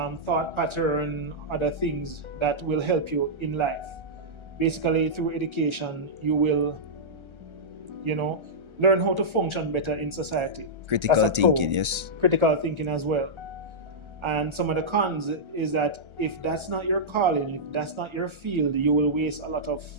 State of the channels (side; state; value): left; late; 1.3 ms